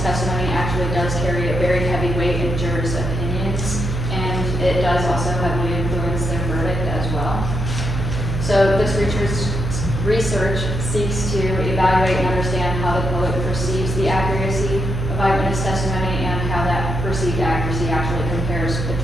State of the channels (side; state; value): right; noise; hum, 3 dB below the sound